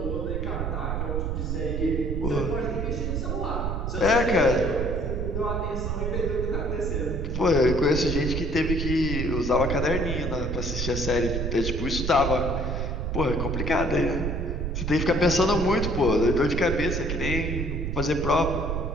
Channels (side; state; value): right; noise; rumble, 2 dB below the sound